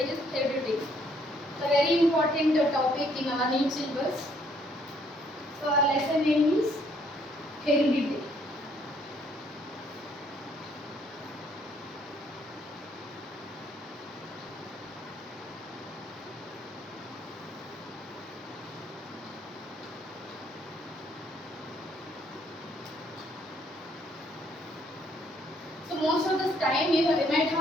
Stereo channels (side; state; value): both; normal; correlation 0.67